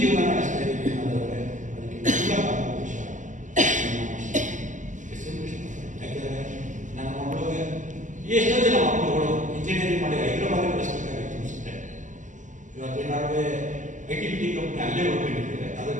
ನಡೆಸ್ತಾ ಇದ್ದೀವಿ ಅನ್ನೋದಾದ್ರೆ ಅದಕ್ಕೆ ಮೂಲ ಕಾರಣಾಂಶ ಎಸ್ ಎಂ ಕೃಷ್ಣ. ಯಾಕೆಂದರೆ ನನ್ನ ಮಕ್ಕಳಿಗೆ ಎಷ್ಟೋ ಜನ ಮಕ್ಕಳುಗಳು ಇಂಜಿನಿಯರಿಂಗ್ ಮಾಡಿ ಹೈದರಾಬಾದ್ ಕಳಿಸ್ಬೇಕಾಗಿತ್ತು ಅನಿಸುತ್ತೆ. ಇವತ್ತೇನಾದ್ರೂ ಐಟಿ ಬಿಟಿ ಕಂಪನಿ ಅಲ್ಲೇ ಹೋಗ್ಕೊಂಡಿದ್ದಾರೆ.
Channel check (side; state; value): left; late; 0.37 ms